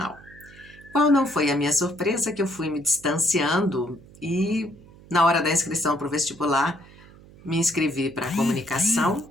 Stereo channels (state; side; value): noise; right; hum, 22 dB below the sound